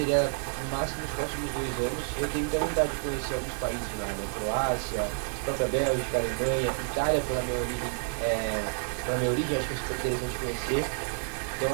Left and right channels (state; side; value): silent; left; 55 dB below the other